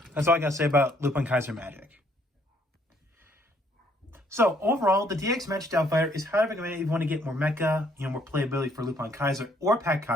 that's all I got to say about LupinKaiser Magic. So overall, the DX Magic Doll Fighter is highly recommended if you want to get more mecha, more playability for LupinKaiser or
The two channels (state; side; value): normal; both; correlation 0.65